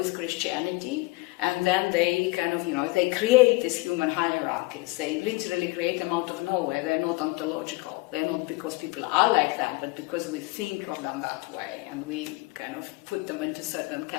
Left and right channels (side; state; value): right; quieter; 23.0 dB